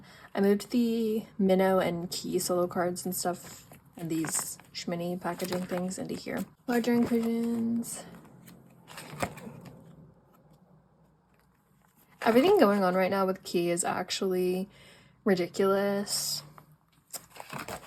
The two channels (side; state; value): both; identical; correlation 1.00